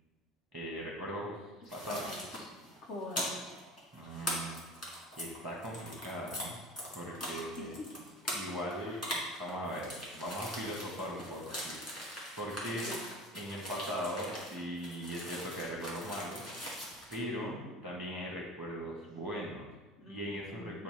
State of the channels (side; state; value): both; normal; correlation 0.39